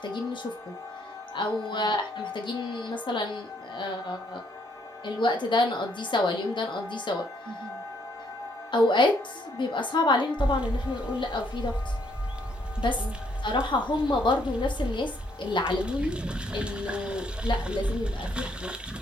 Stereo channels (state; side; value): normal; both; correlation 0.70